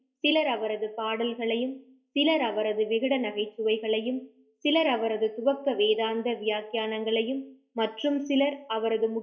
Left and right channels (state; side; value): identical; both; correlation 1.00